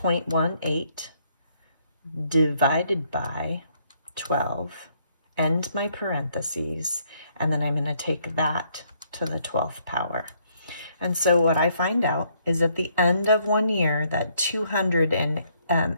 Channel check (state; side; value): inverted; both; correlation -0.69